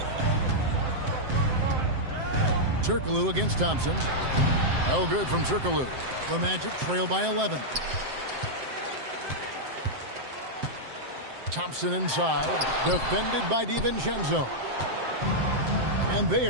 Turkoglu against Thompson. No good from Turkoglu. The Magic trail by 11. Thompson inside. Defended by DiVincenzo. And they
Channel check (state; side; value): late; left; 7.7 ms